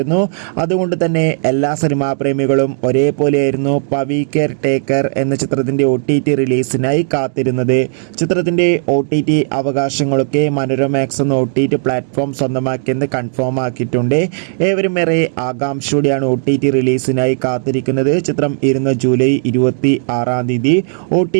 അതുകൊണ്ട് തന്നെ എല്ലാ സിനിമാ പ്രേമികളും ഒരേപോലെയായിരുന്നു പവി കെയർ ടേക്കർ എന്ന ചിത്രത്തിൻ്റെ OTT റിലീസിനായി കാത്തിരുന്നത്. ചിത്രത്തിൻ്റെ OTT അവകാശങ്ങളൊക്കെ മനോരമാക്സ് എന്ന OTT പ്ലാറ്റ്ഫോം സ്വന്തമാക്കിയെന്ന് കൺഫേം ആക്കിയിട്ടുണ്ട്. ഏവരും ഏറെ ആകാംക്ഷയോടെയാണ് OTT റിലീസിനായി കാത്തിരിക്കുന്നത്. ചിത്രം ജൂലൈ 26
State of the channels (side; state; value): left; silent; digital silence